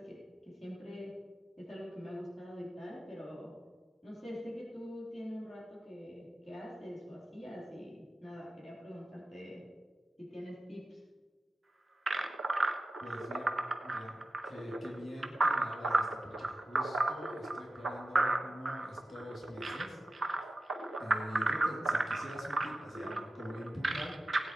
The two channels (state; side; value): normal; both; correlation 0.93